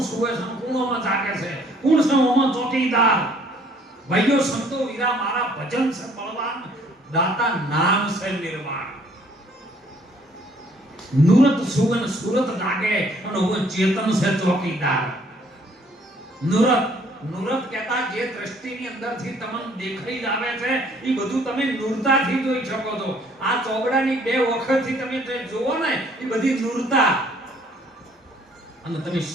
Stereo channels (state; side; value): normal; both; correlation 0.61